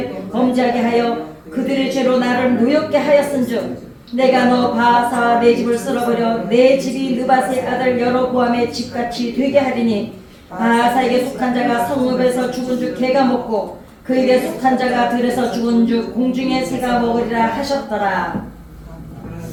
범죄하게 하여 그들의 죄로 나를 노엽게 하였은즉 내가 너 바하사와 내 집을 쓸어버려 내 집이 느밧의 아들 여로보암의 집같이 되게 하리니 바하사에게 속한 자가 성읍에서 죽은 줄 개가 먹고 그에게 속한 자가 들에서 죽은 줄 공중의 새가 먹으리라 하셨더라.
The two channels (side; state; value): both; identical; correlation 1.00